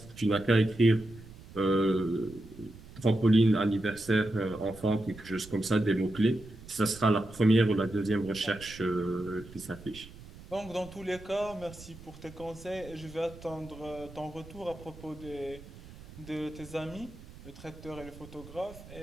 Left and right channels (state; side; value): noise; right; rumble, 18 dB below the sound